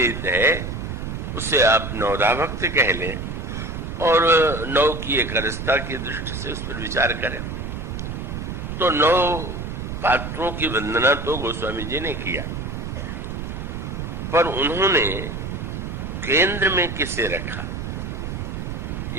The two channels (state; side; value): noise; right; rumble, 5 dB below the sound